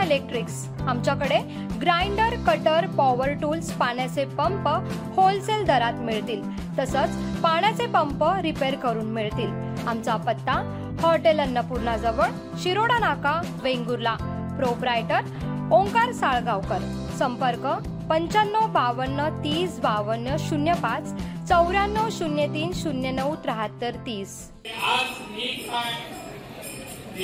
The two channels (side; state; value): both; identical; correlation 1.00